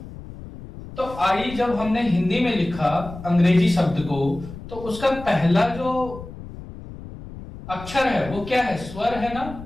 तो आई जब हमने हिंदी में लिखा अंग्रेजी शब्द को, तो उसका पहला जो अक्षर है वो क्या है? स्वर है ना।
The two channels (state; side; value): noise; left; rumble, 14 dB below the sound